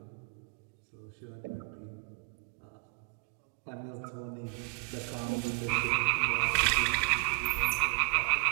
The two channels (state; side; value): quieter; left; 31.5 dB